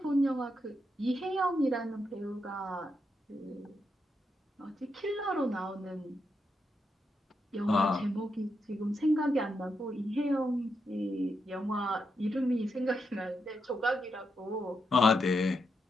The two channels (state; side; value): normal; both; correlation 0.83